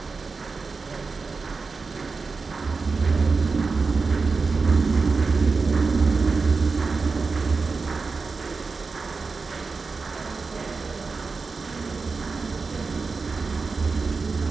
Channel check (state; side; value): quieter; left; 4.4 dB